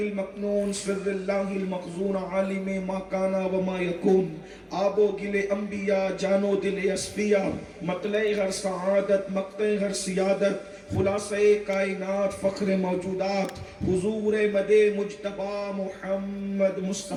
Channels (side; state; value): both; identical; correlation 1.00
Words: سر اللہ المخزون، عالم ما کانا وما یکون، آب و گل انبیاء جان و دل اصفیاء، مطلع ہر سعادت مقطع ہر سیادت، خلاصہ کائنات فخر موجودات، حضور مد مجتبی محمد